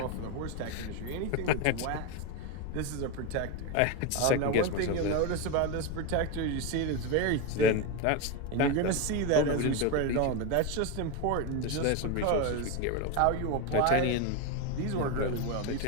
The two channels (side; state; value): both; different; correlation 0.03